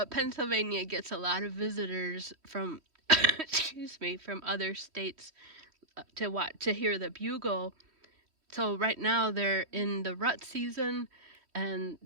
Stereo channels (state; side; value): late; left; 3.1 ms